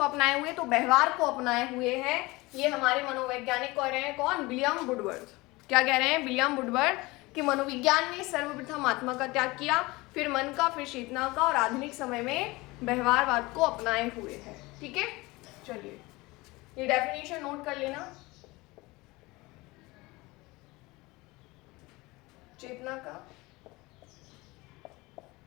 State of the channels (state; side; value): quieter; right; 22.3 dB